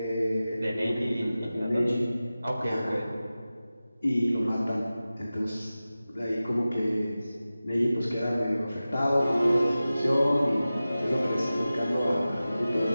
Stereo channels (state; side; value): inverted; both; correlation -0.95